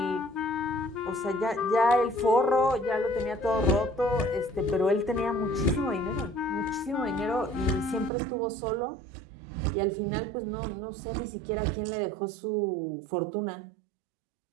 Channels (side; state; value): left; drops out; at 8.1 s